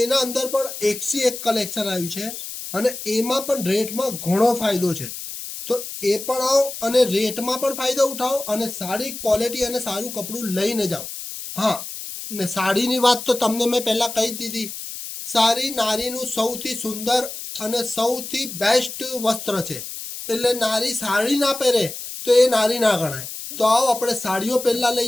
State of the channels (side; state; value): left; noise; hiss, 9 dB below the sound